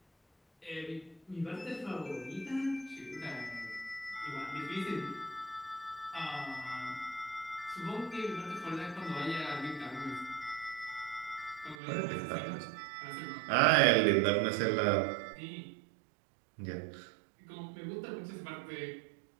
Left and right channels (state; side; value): drops out; left; at 11.8 s